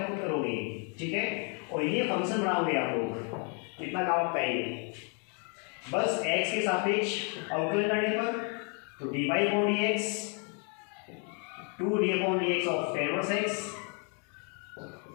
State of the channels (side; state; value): right; quieter; 37.7 dB